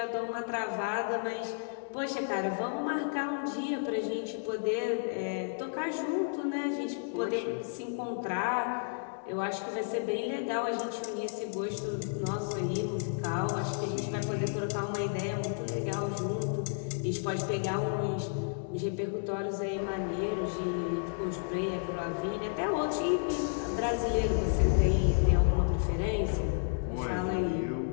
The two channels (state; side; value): silent; right; digital silence